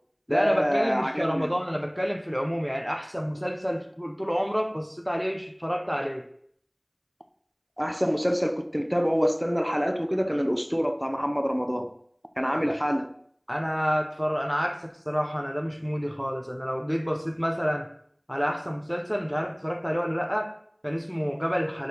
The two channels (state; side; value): identical; both; correlation 1.00